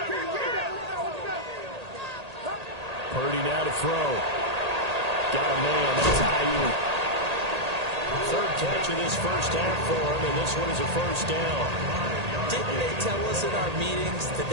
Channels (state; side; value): late; left; 1.8 ms